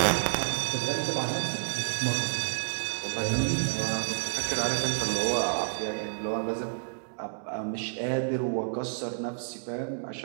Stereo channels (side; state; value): left; silent; digital silence